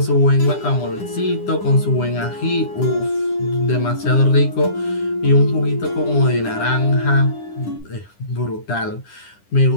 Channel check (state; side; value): late; right; 9.9 ms